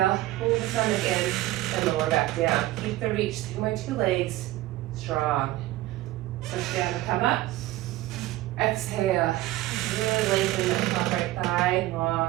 pull the stomach in, and lower back down. Keep the reach through my two legs, strong. Push down to come up. Exhale, really lengthen that top right thigh,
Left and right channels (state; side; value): quieter; left; 16.5 dB